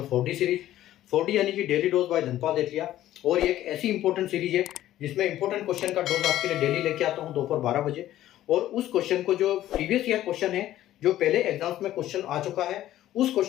4D सीरीज। 4D यानी कि डेली डोज बाय धनपाल एथलिया। और ये एक ऐसी इंपॉर्टेंट सीरीज है जिसमें इंपॉर्टेंट क्वेश्चन का डोज आपके लिए डेली लेके आता हूँ दोपहर 12 बजे। और उस क्वेश्चन को, जो प्रीवियस ईयर क्वेश्चन है, जो पहले एग्जाम्स में क्वेश्चन आ चुका है, उस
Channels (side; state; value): right; quieter; 13.5 dB